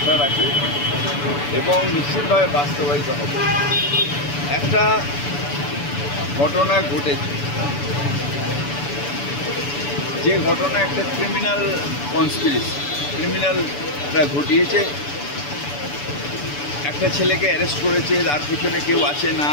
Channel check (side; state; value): right; late; 6.9 ms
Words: রাখি এবং নিশ্চিতভাবে বাস্তবায়িত হবে। একটা ঘটনা ঘটেছে, যে ঘটনা একটা ক্রিমিনাল কনস্পিরেসি, ক্রিমিনালরা ঘটিয়েছে। একটা ছেলেকে অ্যারেস্ট করেছে, তার পিছনে কেউ আছে না